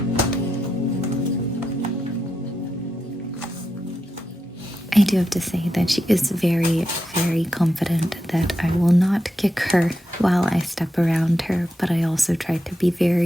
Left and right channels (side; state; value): both; normal; correlation 0.87